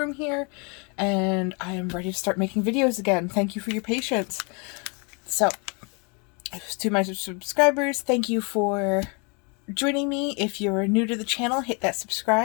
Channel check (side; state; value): right; quieter; 33.0 dB